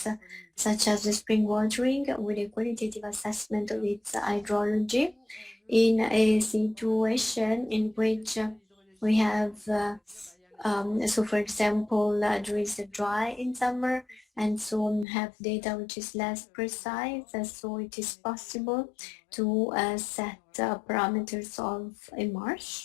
such as the spring watering with a qualitative assessment of its hydrology in a situation in which we have so for example there is a dry in summer, and so have data which is less precise, so it is possible to set parameters of a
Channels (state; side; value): drops out; right; at 15.1 s